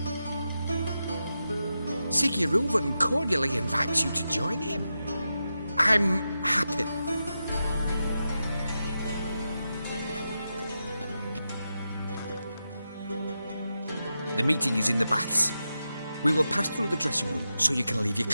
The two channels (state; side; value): inverted; both; correlation -0.89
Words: Siggy Reuven cordially invites you to join him. I'm happy. The meeting is in the baths. We will pass through the dressing room so you can leave your